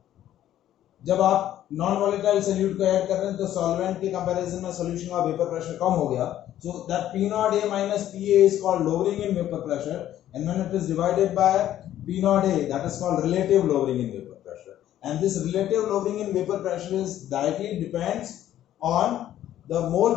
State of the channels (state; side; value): quieter; right; 12.2 dB